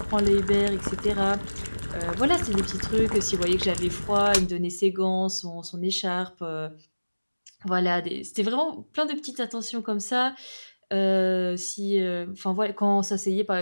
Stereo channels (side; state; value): both; inverted; correlation -1.00